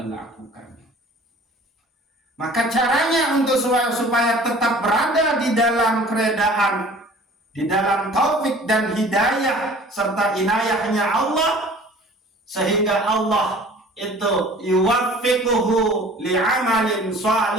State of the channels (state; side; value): normal; both; correlation 0.47